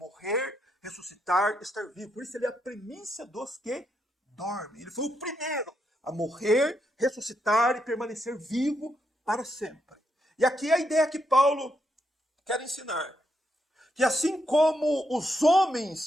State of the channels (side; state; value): both; normal; correlation 0.80